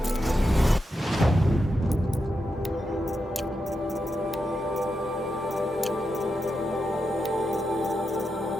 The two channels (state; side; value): normal; both; correlation 0.86